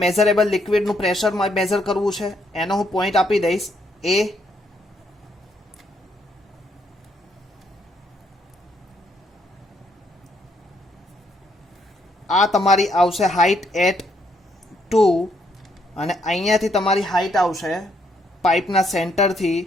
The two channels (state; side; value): normal; both; correlation 0.73